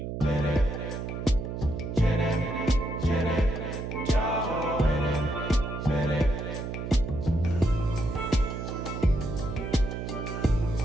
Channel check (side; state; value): right; noise; hum, 5 dB below the sound